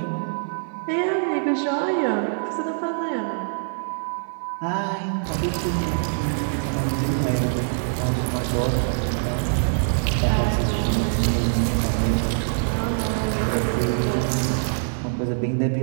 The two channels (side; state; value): left; silent; 60 dB below the other